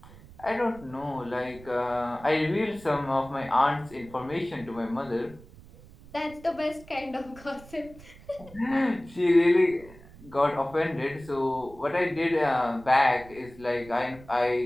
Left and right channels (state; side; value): noise; right; rumble, 21 dB below the sound